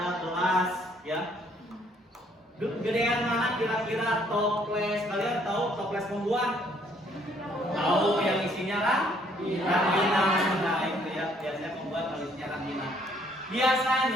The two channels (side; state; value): both; normal; correlation 0.65